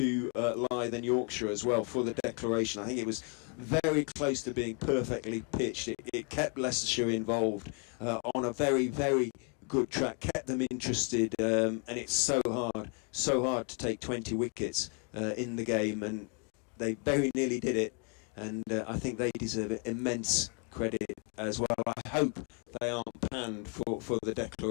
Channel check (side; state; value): right; quieter; 38.2 dB